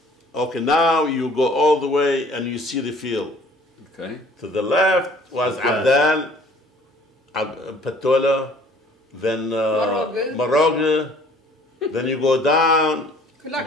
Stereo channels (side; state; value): both; normal; correlation 0.54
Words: Okay, now you go all the way and you see the field. Okay. To the left was Abdal, Patola, then Maroga. Then you go down,